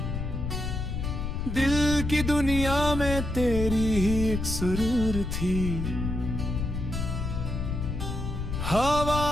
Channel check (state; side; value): noise; left; rumble, 3 dB below the sound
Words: दिल की दुनिया में तेरी ही एक सुरूर थी।